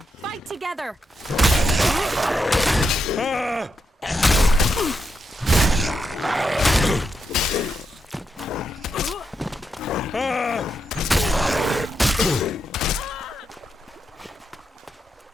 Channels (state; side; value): normal; both; correlation 0.84